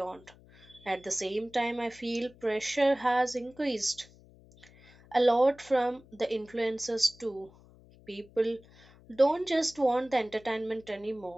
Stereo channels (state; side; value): noise; left; hum, 25 dB below the sound